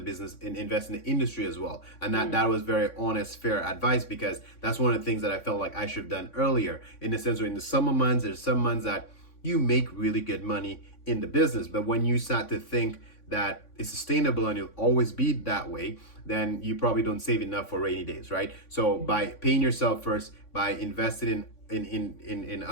invest in the industry as well. And that was very honest, fair advice, because that's one of the things that I felt like I should have done earlier, in the sense where in the summer months, there's some months that you make really good money in the business. But when you start to think that it's sustainable and you'll always be that way, then you probably don't save enough for rainy days, right? So by paying yourself first, by investing in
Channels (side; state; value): right; late; 3.6 ms